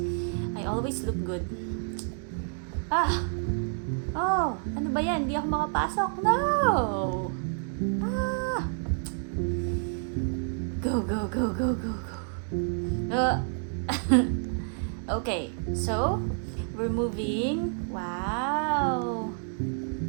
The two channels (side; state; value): left; silent; 58 dB below the other